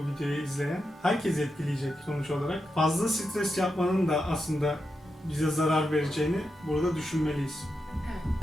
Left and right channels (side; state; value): both; normal; correlation 0.87